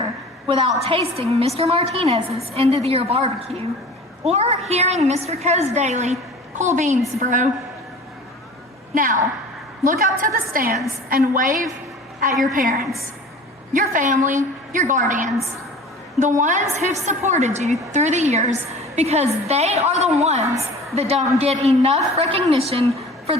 without tasting Mr. Martinez's end of the year barbecue or hearing Mr. Coe's daily, cool beans, bro. Now, look up to the stands and wave at your parents, your family, your guardians, the ones who've supported you through the years, because they are the ones that don't get enough recognition for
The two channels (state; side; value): normal; both; correlation 0.41